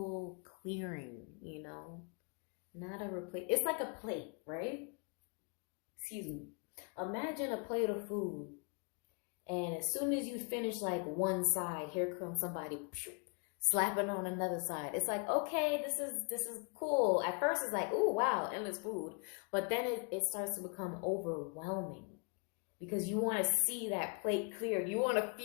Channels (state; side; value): quieter; right; 35.8 dB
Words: clearing, you know? Not a replace. It's like a plate, right? Excuse me. Imagine a plate of food, and as soon as you finish like one side, here comes somebody slapping on another side. It's like, okay, this is cool. At first it's like, ooh, wow, endless food. But then it starts to become overwhelming because you want to see that plate cleared. You want to